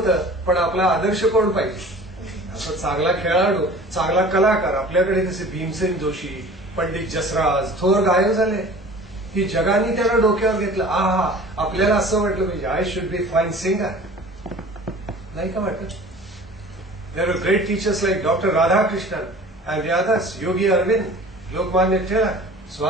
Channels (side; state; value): both; normal; correlation 0.43